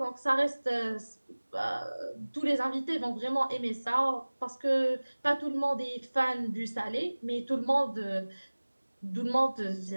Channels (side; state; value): both; inverted; correlation -1.00